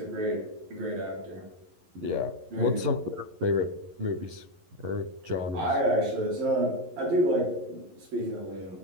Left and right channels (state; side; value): late; left; 11 ms